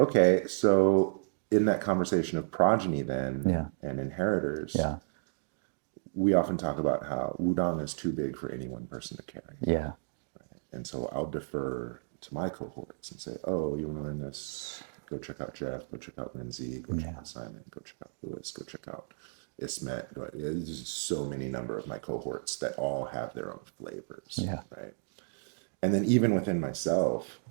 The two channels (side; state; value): left; silent; digital silence